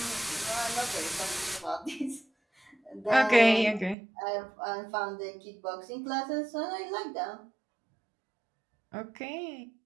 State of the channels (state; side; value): drops out; left; at 4.0 s